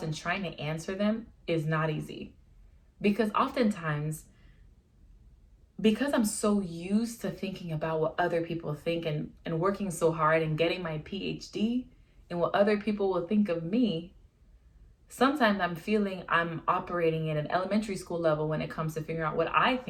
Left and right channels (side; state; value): both; identical; correlation 1.00